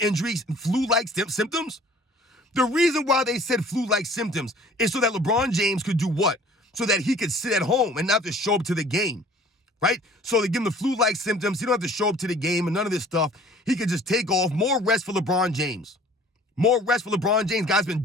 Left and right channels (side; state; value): both; normal; correlation 0.50